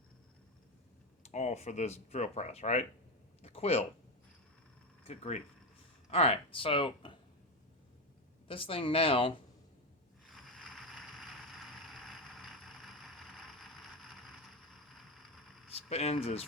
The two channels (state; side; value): normal; both; correlation 0.12